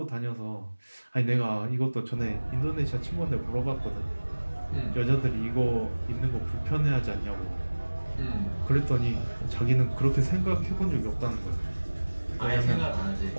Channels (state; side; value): inverted; both; correlation -1.00